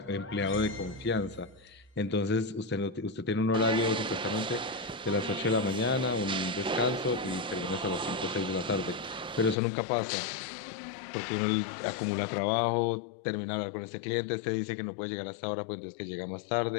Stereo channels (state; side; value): drops out; right; at 9.6 s